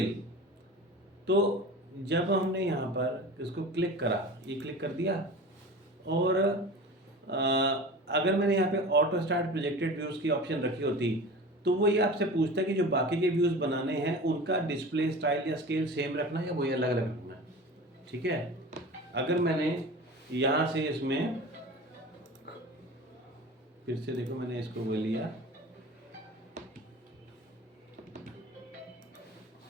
तो जब हमने यहाँ पर इसको क्लिक करा, ये क्लिक कर दिया, और अगर मैंने यहाँ पे ऑटो स्टार्ट प्रोजेक्टेड व्यूज़ की ऑप्शन रखी होती तो वो ये आपसे पूछता है कि जो बाकी के व्यूज़ बनाने हैं उनका डिस्प्ले स्टाइल या स्केल सेम रखना है या वही अलग अलग रखना है। ठीक है, अगर मैंने यहाँ से इसमें फिर से देखो, मैंने इसको वो लिया,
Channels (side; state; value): both; normal; correlation 0.35